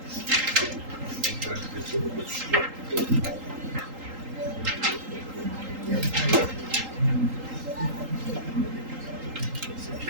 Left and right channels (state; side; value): late; left; 3.8 ms